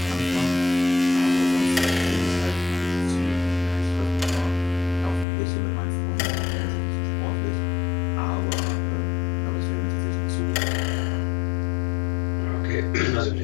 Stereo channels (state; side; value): drops out; right; at 5.2 s